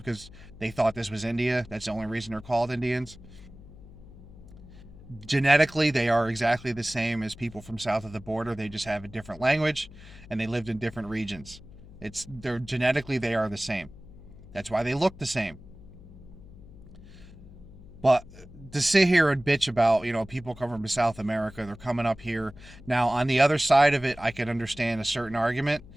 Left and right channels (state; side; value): noise; left; hum, 19 dB below the sound